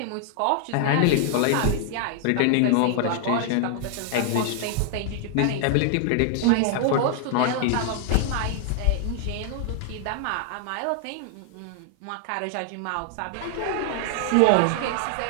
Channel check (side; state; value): both; different; correlation 0.00